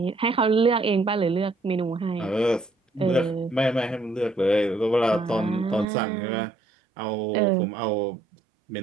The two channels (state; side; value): drops out; left; at 5.9 s